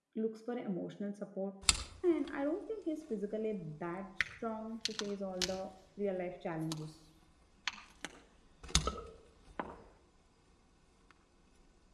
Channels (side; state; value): both; identical; correlation 1.00